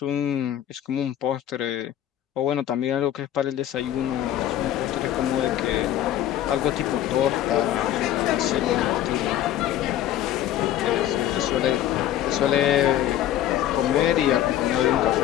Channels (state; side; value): quieter; right; 12.0 dB